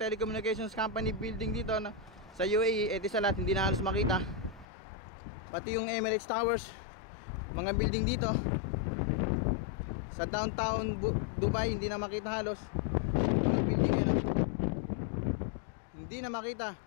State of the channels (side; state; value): right; drops out; at 4.7 s